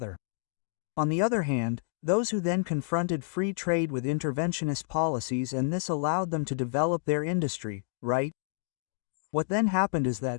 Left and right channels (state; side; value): silent; right; digital silence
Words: On the other hand, those who then confronted free trade with interventionist policies, and this allowed them to develop their industry, right? What then happened is